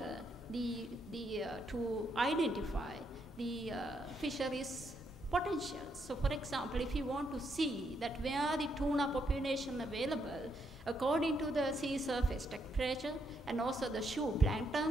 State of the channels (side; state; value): both; normal; correlation 0.77